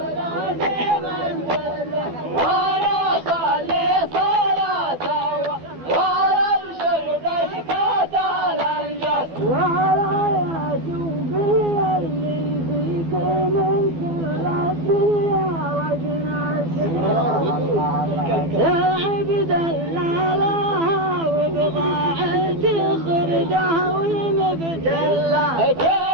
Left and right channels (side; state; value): left; late; 12 ms